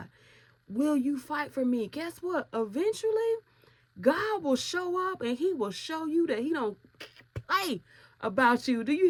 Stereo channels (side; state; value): both; identical; correlation 1.00